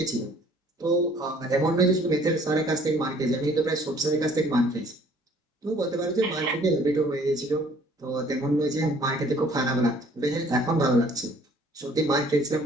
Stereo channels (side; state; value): both; normal; correlation 0.57